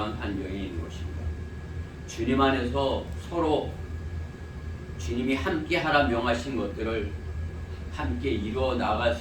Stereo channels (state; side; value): identical; both; correlation 1.00